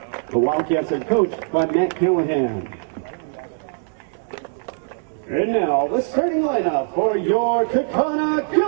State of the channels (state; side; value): silent; left; digital silence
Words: The Wildcats are coached by Matt Callahan. And now, the starting lineup for your Kaukauna